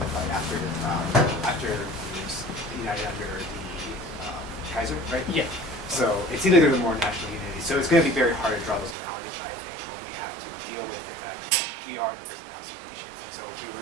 after it was united under the Kaiser, right? Yeah. So it seems like there's a more national unity. So it's going to be very hard to draw those analogies, I think, when we have to deal with the fact that we are in a prison house of nations. And so if we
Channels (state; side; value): drops out; left; at 9.0 s